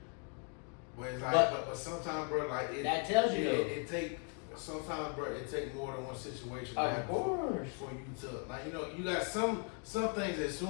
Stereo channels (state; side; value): quieter; right; 39.5 dB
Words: but it's like, But- but sometimes, bro, like, That tells you, though. it take, sometimes, bro, it take more than one situation to Of happen course. for you to, like, you know, you got some things that